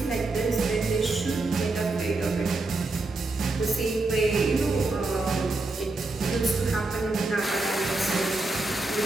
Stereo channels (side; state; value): left; quieter; 3.2 dB